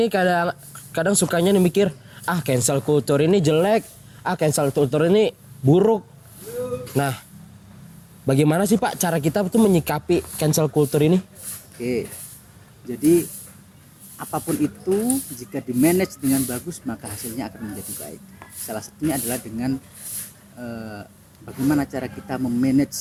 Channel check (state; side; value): identical; both; correlation 1.00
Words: kadang sukanya mikir, cancel culture ini jelek, cancel culture ini buruk. Nah, bagaimana sih Pak cara kita tuh menyikapi cancel culture ini? Oke. Jadi apapun itu jika di-manage dengan bagus maka hasilnya akan menjadi baik. Salah satunya adalah dengan bagaimana cara kita